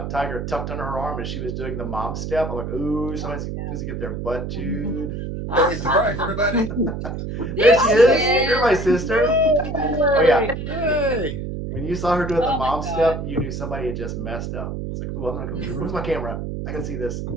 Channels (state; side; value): noise; right; hum, 5 dB below the sound